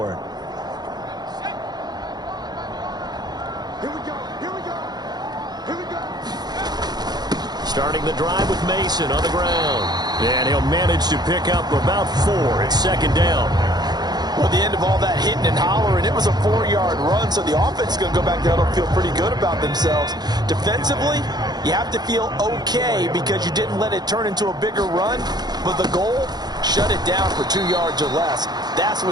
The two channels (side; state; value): left; late; 0.20 ms